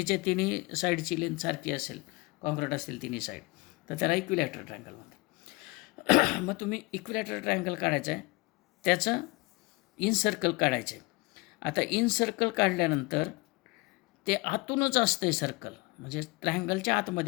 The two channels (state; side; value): quieter; right; 24.4 dB